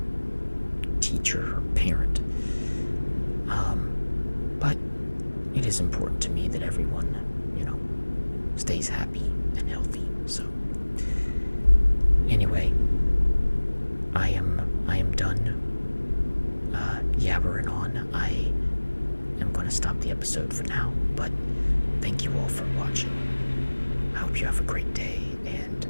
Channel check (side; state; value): both; inverted; correlation -1.00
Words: teacher or parent. But it is important to me that everyone, stays happy and healthy. So anyway, I am done yabbering on. I am going to stop the episode for now, but thank you all for watching. I hope you have a great day, and